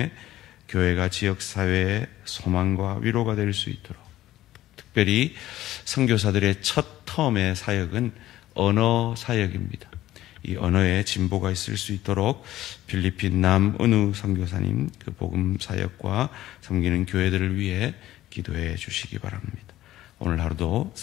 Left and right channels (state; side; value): quieter; right; 14.6 dB